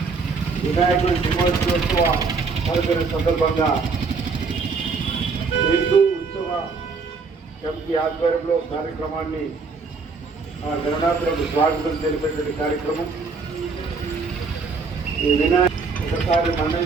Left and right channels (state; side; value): quieter; left; 4.5 dB